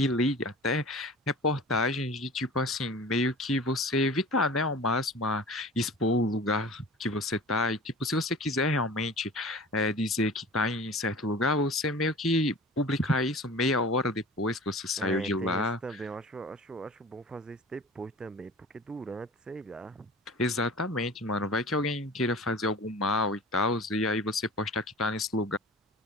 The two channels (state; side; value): normal; both; correlation 0.39